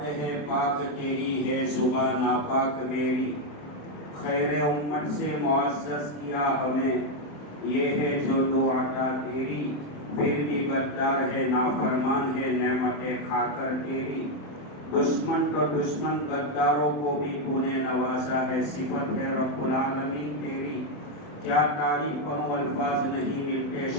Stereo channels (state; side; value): late; right; 27 ms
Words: ہے پاک تیری ہے صبح ناپاک میری. خیر امت سے معزز کیا ہمیں، یہ ہے جو دو عطا تیری. پھر بھی غدار ہے نافرمان ہے نعمتیں کھا کر تیری. دشمن تو دشمن غداروں کو بھی تو نے نوازا ہے، صفت ہے رب العالمین تیری. کیا تعریف کروں الفاظ نہیں ملتے